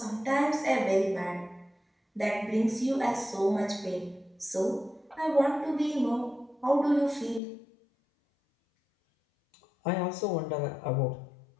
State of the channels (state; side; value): drops out; right; at 7.4 s